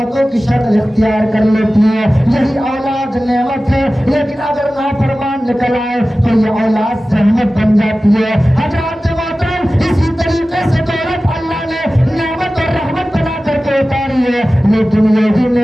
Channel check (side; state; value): both; normal; correlation 0.96